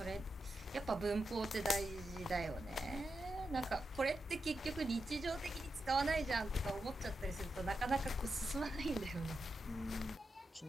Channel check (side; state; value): both; normal; correlation 0.87